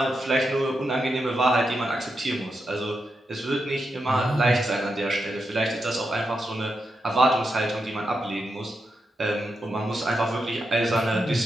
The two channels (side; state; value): both; normal; correlation 0.86